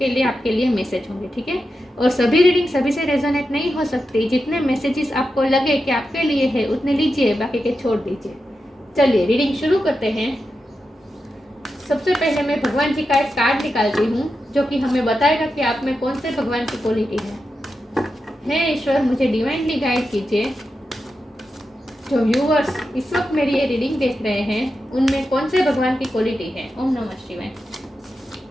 लिए आपके लिए मैसेज होंगे, ठीक है। और सभी रीडिंग सभी से रेजोनेट नहीं हो सकती। जितने मैसेजेस आपको लगे कि आपके लिए है उतने लीजिए, बाकी के छोड़ दीजिए। चलिए रीडिंग शुरू करते हैं। सबसे पहले मैं भगवान जी का एक कार्ड निकालती हूँ जो कि हमें बताएगा कि आप में कौन से भगवान की क्वालिटी है। हे ईश्वर, मुझे डिवाइनली गाइड कीजिए। जो व्यूअर्स इस वक्त मेरी ये रीडिंग देख रहे हैं उनमें कौन से भगवान की क्वालिटी है। ओम नमः शिवाय।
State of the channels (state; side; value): normal; both; correlation 0.89